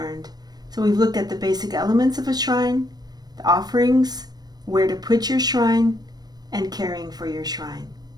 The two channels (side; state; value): left; late; 0.19 ms